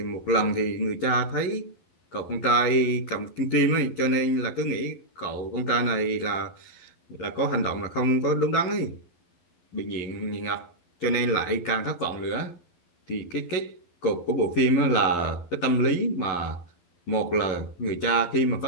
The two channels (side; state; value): right; late; 11 ms